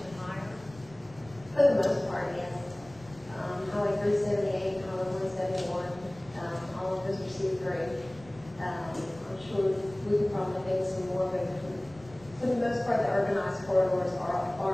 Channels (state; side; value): noise; left; rumble, 22 dB below the sound